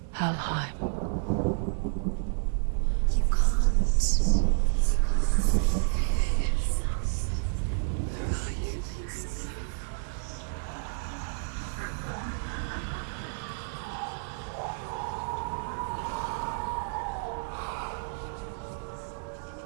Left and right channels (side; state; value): left; silent; digital silence